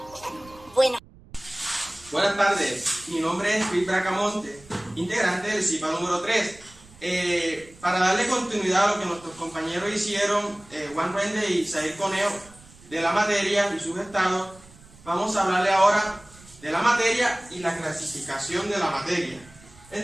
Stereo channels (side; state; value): right; noise; rumble, 24 dB below the sound